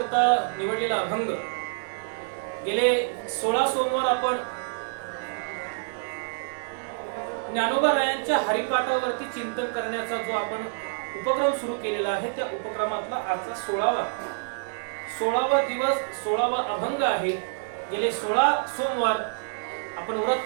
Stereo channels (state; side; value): silent; left; digital silence